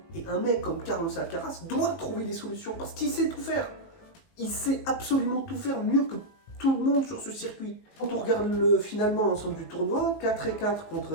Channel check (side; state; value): right; late; 19 ms